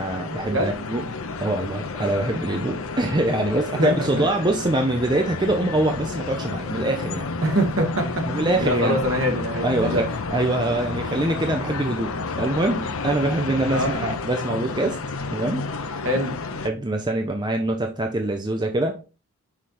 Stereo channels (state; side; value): normal; both; correlation 0.50